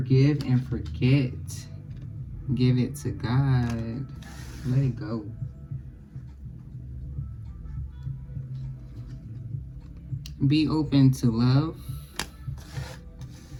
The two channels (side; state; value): both; identical; correlation 1.00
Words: and forget. Give it to God. Let it go. Be open to love.